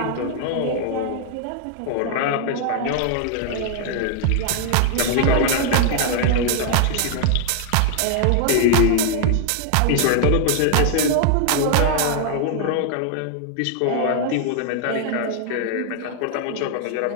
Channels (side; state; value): both; different; correlation 0.00